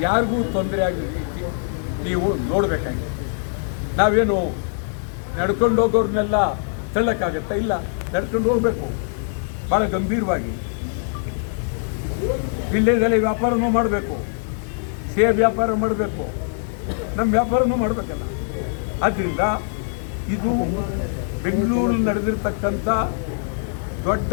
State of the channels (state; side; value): silent; right; digital silence